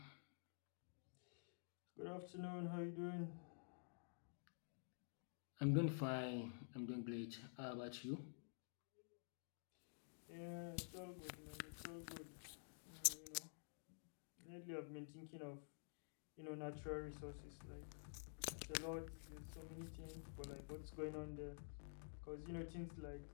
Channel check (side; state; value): right; silent; digital silence